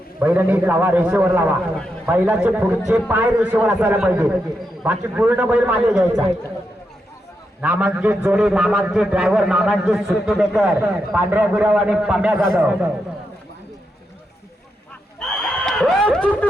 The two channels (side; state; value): both; normal; correlation 0.84